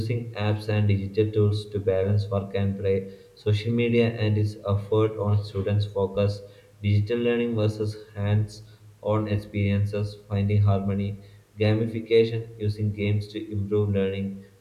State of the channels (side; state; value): both; identical; correlation 1.00